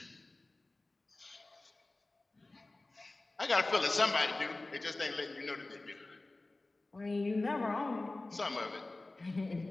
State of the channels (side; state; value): right; quieter; 3.0 dB